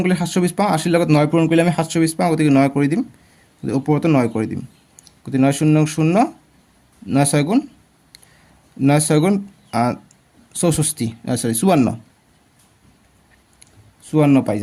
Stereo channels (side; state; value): both; identical; correlation 1.00